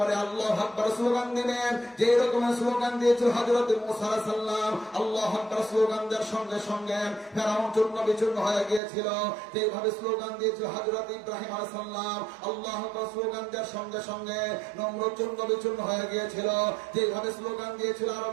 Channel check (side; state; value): left; drops out; at 8.8 s